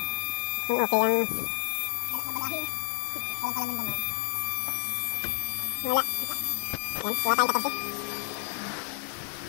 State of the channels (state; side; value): silent; right; digital silence